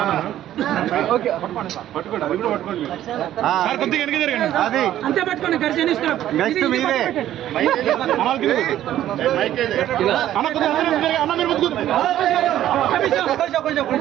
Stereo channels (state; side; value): quieter; left; 12.4 dB